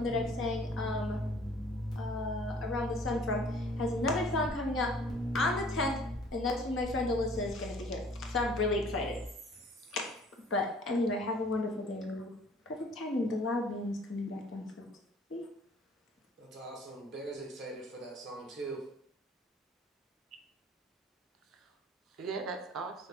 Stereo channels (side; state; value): both; normal; correlation 0.54